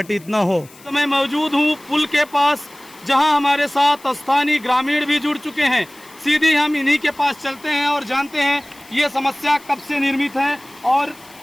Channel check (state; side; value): noise; left; hiss, 24 dB below the sound